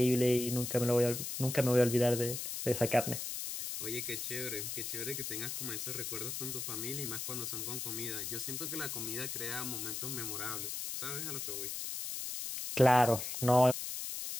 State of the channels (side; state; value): left; noise; hiss, 5 dB below the sound